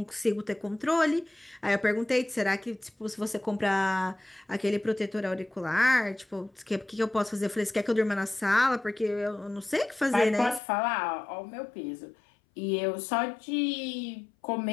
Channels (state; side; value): drops out; right; at 10.6 s